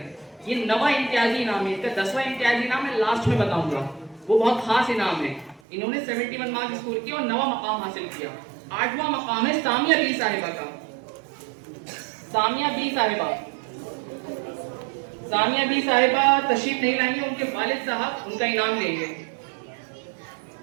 ये 9वां इम्तियाजी इनाम है, इसका 10वां इम्तियाजी इनाम मैं लास्ट में बताऊंगा, वो बहुत खास इनाम है। इन्होंने 71 मार्क्स स्कोर किया और 9वां मकाम हासिल किया। 8वां मकाम है सामिया बी साहिबा का। सामिया बी साहिबा, सामिया बी साहिबा तशरीफ नहीं लाएंगे, उनके वालिद साहब उनका इनाम देंगे।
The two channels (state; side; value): drops out; left; at 5.6 s